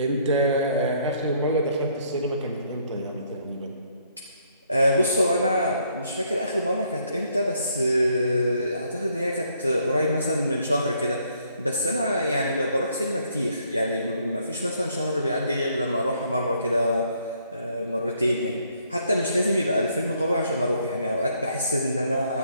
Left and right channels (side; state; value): both; inverted; correlation -0.69